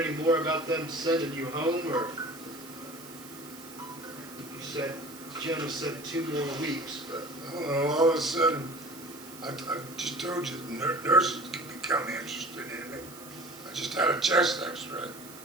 any more about them sending you home, or you said, Jenna said 2 more weeks, but I don't know, all of a sudden, I just told you, nurses can become interested in it. I just had a chest x-ray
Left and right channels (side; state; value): right; noise; hiss, 17 dB below the sound